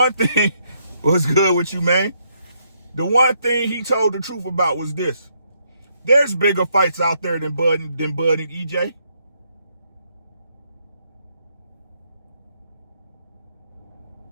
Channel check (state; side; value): inverted; both; correlation -0.74